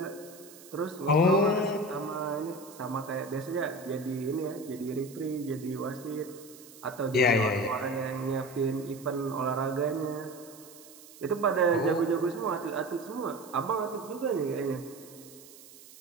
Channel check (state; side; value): noise; right; hiss, 20 dB below the sound